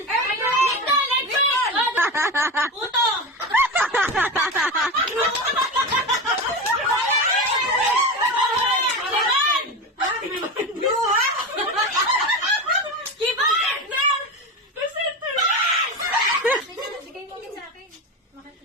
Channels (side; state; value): both; normal; correlation 0.22